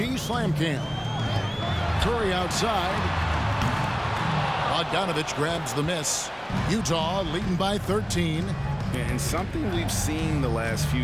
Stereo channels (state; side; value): identical; both; correlation 1.00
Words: Slam Cam. Curry outside. Bogdanovich grabs the miss. Utah leading by 13. And something we've seen the last few